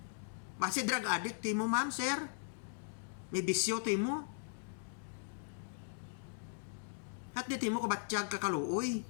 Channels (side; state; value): right; silent; digital silence